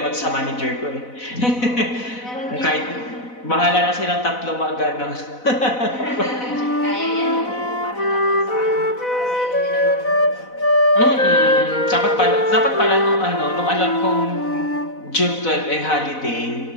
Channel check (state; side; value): late; right; 4.0 ms